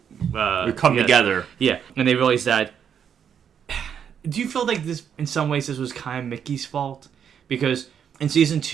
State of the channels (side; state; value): left; quieter; 8.1 dB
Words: come together. Yeah. And they realize that... Do you feel like this, in some ways, this was kind of Mickey's fault? Because in Season